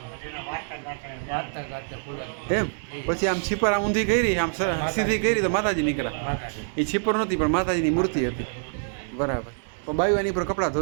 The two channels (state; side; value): silent; left; digital silence